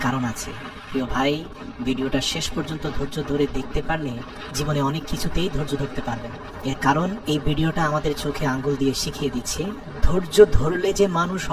কারণ আছে। প্রিয় ভাই, ভিডিওটা শেষ পর্যন্ত ধৈর্য ধরে দেখতে পারলে জীবনে অনেক কিছুতেই ধৈর্য ধরতে পারবেন। এর কারণ এই ভিডিওটা আমাদের চোখে আঙ্গুল দিয়ে শিখিয়ে দিচ্ছে ধৈর্য ধরলে যে মানুষ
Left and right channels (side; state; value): both; identical; correlation 1.00